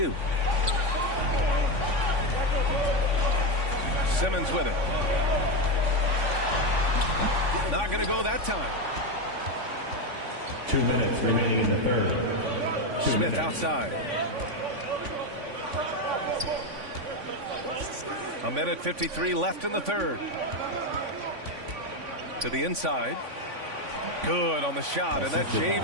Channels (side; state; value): left; late; 3.5 ms